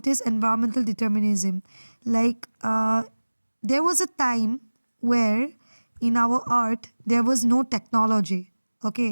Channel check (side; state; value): both; inverted; correlation -1.00